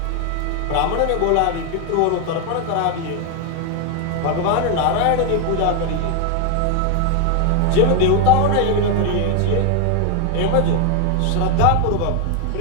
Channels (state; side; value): different; both; correlation 0.01